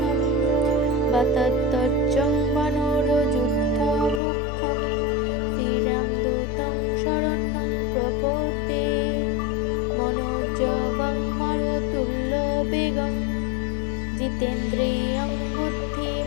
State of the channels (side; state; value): right; drops out; at 4.2 s